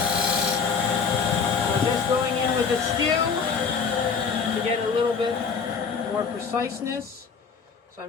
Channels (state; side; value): quieter; right; 5.7 dB